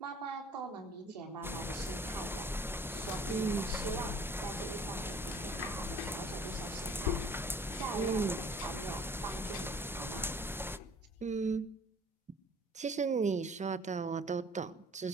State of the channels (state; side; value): normal; both; correlation 0.52